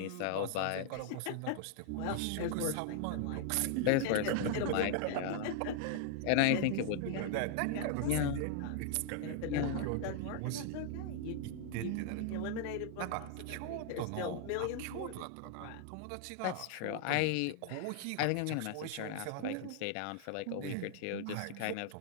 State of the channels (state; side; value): different; both; correlation 0.00